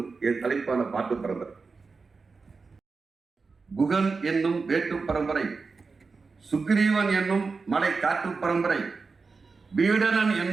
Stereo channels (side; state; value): left; quieter; 4.5 dB